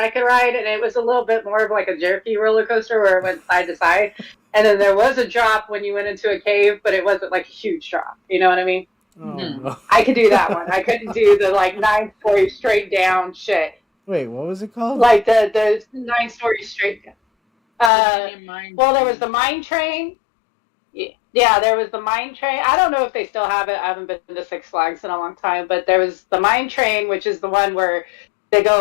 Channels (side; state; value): right; drops out; at 17.9 s